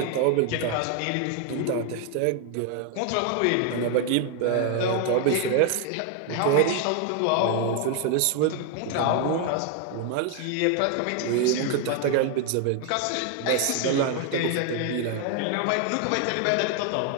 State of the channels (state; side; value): different; both; correlation 0.01